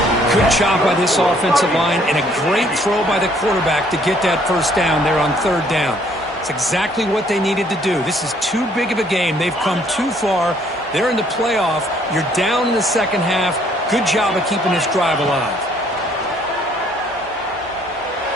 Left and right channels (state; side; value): normal; both; correlation 0.63